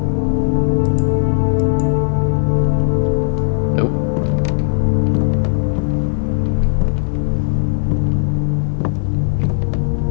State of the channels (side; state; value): right; silent; 56 dB below the other